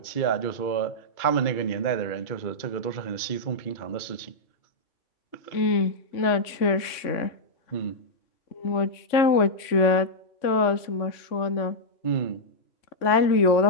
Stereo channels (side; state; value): right; late; 3.5 ms